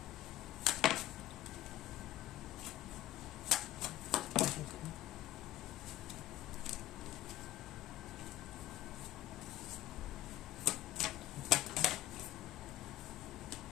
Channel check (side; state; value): right; quieter; 15.1 dB